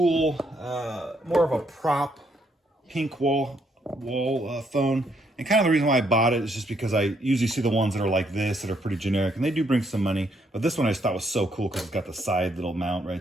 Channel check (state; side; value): normal; both; correlation 0.73